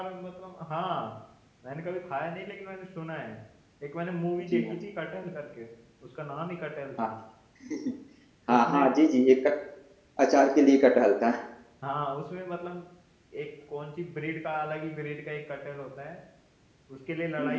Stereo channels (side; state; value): both; identical; correlation 1.00